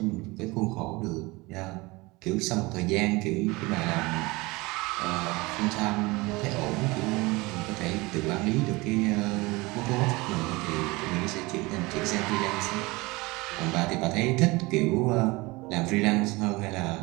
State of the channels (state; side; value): quieter; left; 23.2 dB